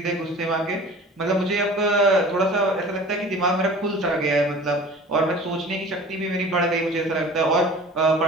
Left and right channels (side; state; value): both; normal; correlation 0.42